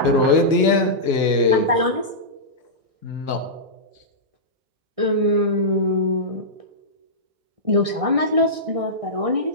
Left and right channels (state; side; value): late; left; 1.6 ms